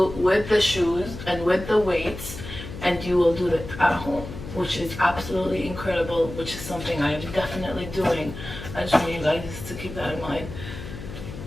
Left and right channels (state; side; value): noise; left; hum, 11 dB below the sound